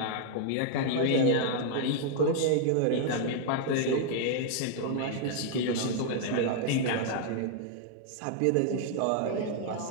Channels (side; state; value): both; different; correlation 0.00